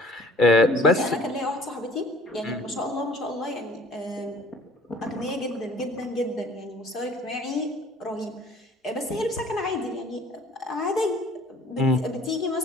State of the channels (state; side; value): normal; both; correlation 0.53